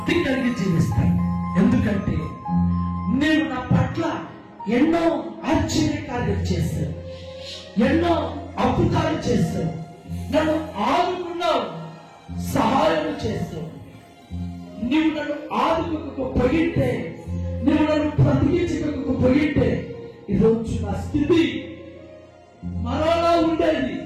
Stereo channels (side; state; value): both; identical; correlation 1.00